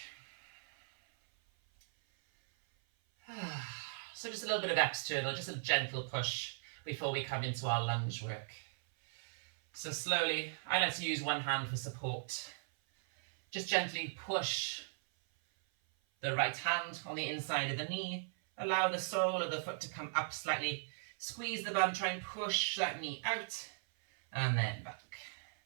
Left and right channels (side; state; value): left; silent; 52 dB below the other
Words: So just a little bit of external, just a gentle push before we come into our lunge work. So slowly, I like to use one hand for support. Just gently push the right hand on the inside of the knee. Allow the sole of the foot to come up slightly. Squeeze the bum, try and push that knee out, and then back.